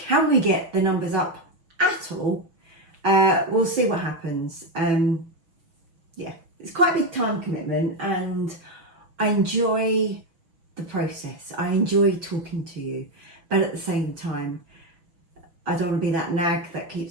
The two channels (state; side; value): late; left; 6.1 ms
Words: we get the numbers up at all? We'll see what happens. Yeah, it's quite a big time commitment and I enjoy the process. I enjoy talking to you, but at the same time, I don't want to be that nag that